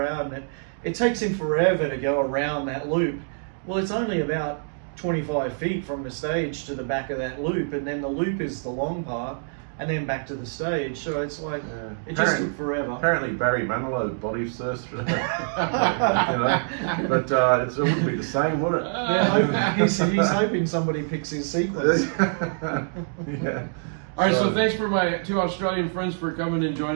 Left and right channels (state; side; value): silent; left; digital silence